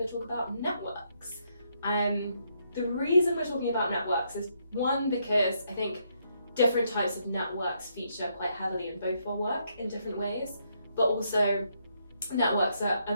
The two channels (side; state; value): both; inverted; correlation -0.75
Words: to talk about networks. The reason we're talking about networks is one, because I think different types of networks feature quite heavily in both our work in different ways, but also networks are a